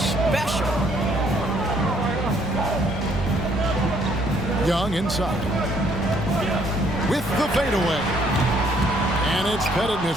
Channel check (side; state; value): both; normal; correlation 0.65